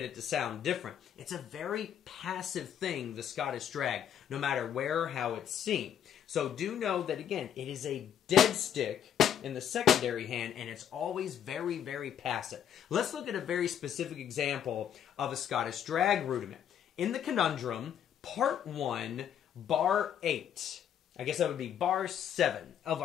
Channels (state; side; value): quieter; right; 9.4 dB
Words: it to sound different. It's a very passive thing, the Scottish drag, no matter where or how it's seen. So do know that, again, it is a dead stick in the secondary hand, and it's always very, very passive. Let's look at a very specific example of a Scottish drag rudiment. In the Conundrum, part 1, bar 8, I guess that would be bar 7 of